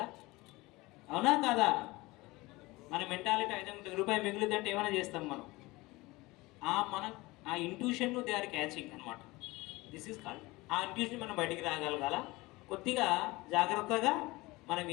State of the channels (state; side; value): quieter; right; 21.6 dB